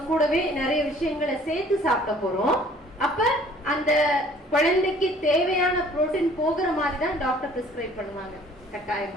கூடவே நிறைய விஷயங்களை சேர்த்து சாப்பிட போறோம். அப்ப அந்த குழந்தைக்கு தேவையான புரோட்டீன் போகிற மாதிரி தான் டாக்டர் பிரிஸ்கிரைப் பண்ணுவாங்க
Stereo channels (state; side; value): normal; both; correlation 0.54